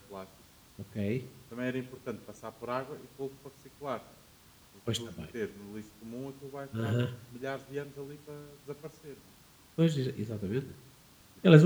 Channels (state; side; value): identical; both; correlation 1.00